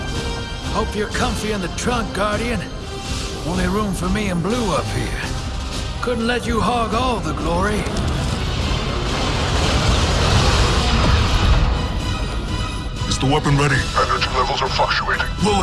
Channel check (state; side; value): identical; both; correlation 1.00